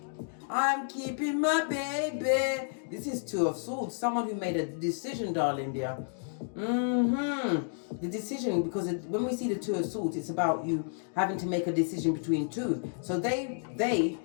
I'm keeping my baby. This is Two of Swords. Someone who made a decision, darling dear. The decision, because when we see the Two of Swords, it's about you having to make a decision between two. So they,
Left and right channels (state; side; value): silent; right; digital silence